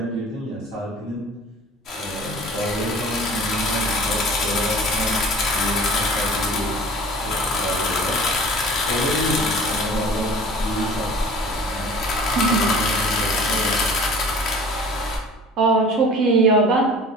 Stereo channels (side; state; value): both; normal; correlation 0.45